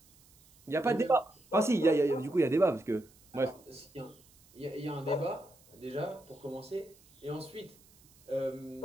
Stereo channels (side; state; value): right; noise; hiss, 28 dB below the sound